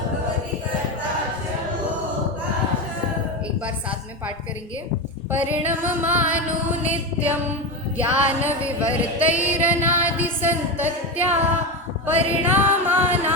एक बार साथ में पाठ करेंगे। परिणममानो नित्यं ज्ञान विवर्तैरनादि संतत्या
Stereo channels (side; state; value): both; normal; correlation 0.17